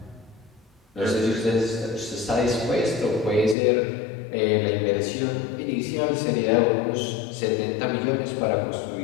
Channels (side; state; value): right; drops out; at 3.6 s